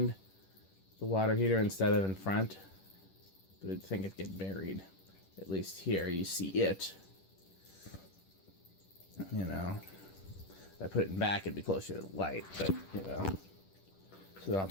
the water heater instead of in front, but I think it'd get buried. At least here you see it. You know, if I put it in back, it'd be closer to the light, but you know. So then I'll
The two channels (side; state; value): right; late; 10 ms